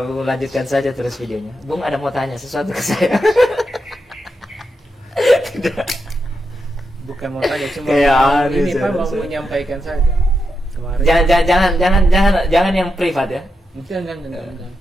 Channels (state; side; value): normal; both; correlation 0.86